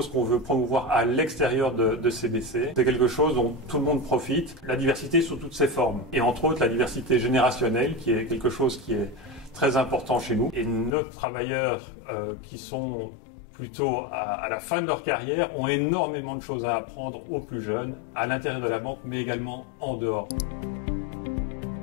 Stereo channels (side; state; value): right; drops out; at 10.9 s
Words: qu'on veut promouvoir à l'extérieur de CBC. C'est quelque chose dont tout le monde profite, la diversité sous toutes ses formes. Et entre autres, la diversité générationnelle, qui est quelque chose qui est très important chez nous. Et nos travailleurs qui sont plutôt à la fin de leur carrière, ont énormément de choses à apprendre aux plus jeunes, à l'intérieur de la banque, mais également en dehors.